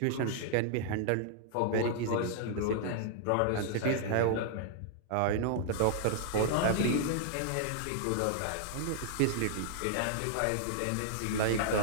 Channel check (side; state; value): both; different; correlation -0.01